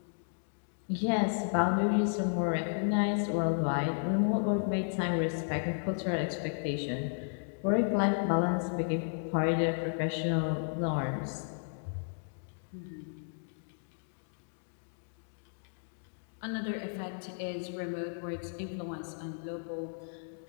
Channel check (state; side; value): silent; right; digital silence